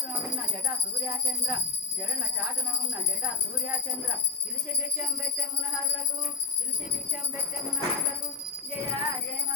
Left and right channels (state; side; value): quieter; right; 5.1 dB